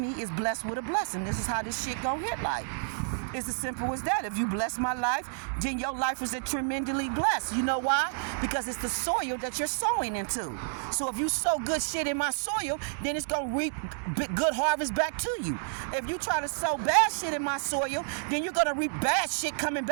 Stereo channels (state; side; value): silent; left; digital silence